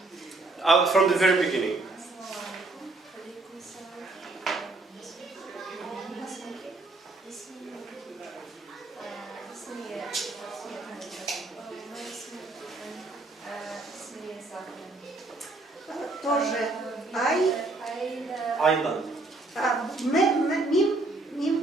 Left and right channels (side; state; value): left; quieter; 3.1 dB